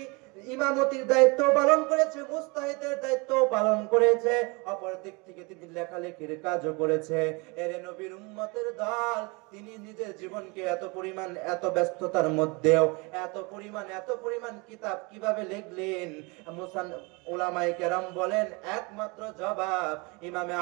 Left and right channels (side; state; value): left; quieter; 28.3 dB